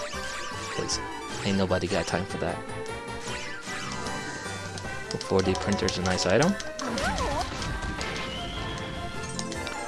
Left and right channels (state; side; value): identical; both; correlation 1.00